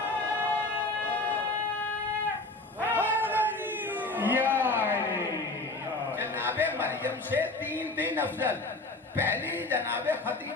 جناب مریم سے 3 افضل، پہلی جناب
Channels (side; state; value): right; quieter; 3.0 dB